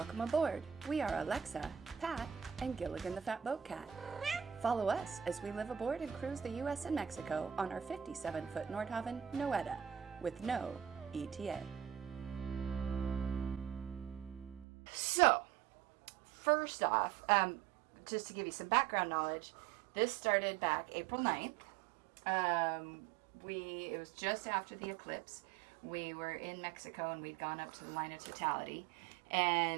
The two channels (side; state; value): left; drops out; at 14.7 s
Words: aboard. We are Alexa, Pat, and Gilligan the Fat Boat Cat. Follow us as we live aboard and cruise the U.S. and Mexico on our 57-foot Nordhavn Noeta with no ETA. So, first off, just to give you some background knowledge, this started back April 9th. It was just after the eclipse. We were in Mexico and we'd gone up to the line of totality.